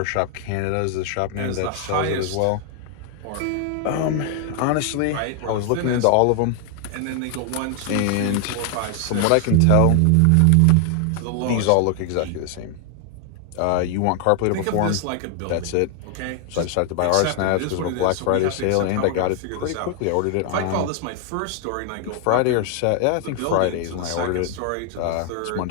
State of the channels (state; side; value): different; both; correlation 0.00